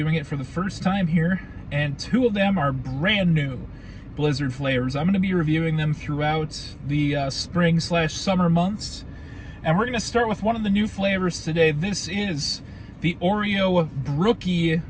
it for the first time here. And two of them are brand new Blizzard flavors. I'm going to be reviewing them throughout the spring/summer months. And we're going to start with one of the new flavors today. This is the Oreo Brookie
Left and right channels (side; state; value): both; identical; correlation 1.00